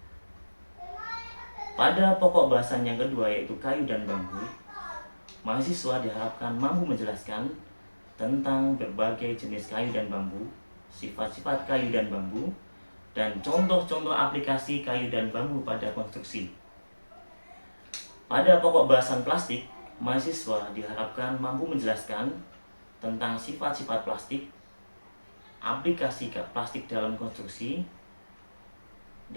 Pada pokok bahasan yang kedua, yaitu kayu dan bambu, mahasiswa diharapkan mampu menjelaskan tentang berbagai jenis kayu dan bambu, sifat-sifat kayu dan bambu, dan contoh-contoh aplikasi kayu dan bambu pada konstruksi. Pada pokok bahasan plastik, mahasiswa diharapkan mampu menjelaskan tentang sifat-sifat plastik, aplikasi plastik dalam konstruksi,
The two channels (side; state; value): both; inverted; correlation -1.00